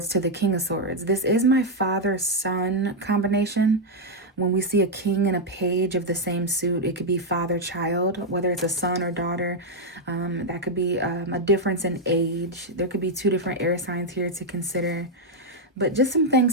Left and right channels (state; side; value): normal; both; correlation 0.00